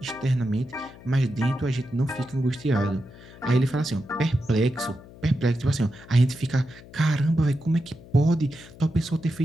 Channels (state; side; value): noise; left; hum, 20 dB below the sound